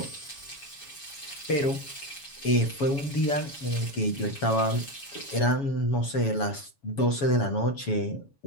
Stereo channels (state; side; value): late; right; 7.1 ms